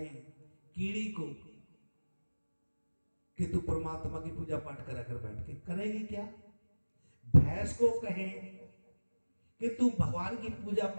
कीड़ी को कि तू परमात्मा की पूजा पाठ करा कर बैठ के, करेगी क्या? भैंस को कहें कि तू भगवान की पूजा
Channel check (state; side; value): inverted; both; correlation -1.00